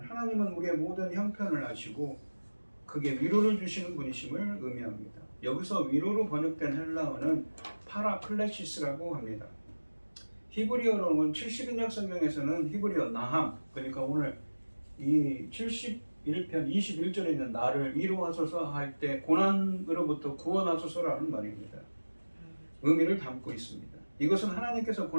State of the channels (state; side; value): inverted; both; correlation -1.00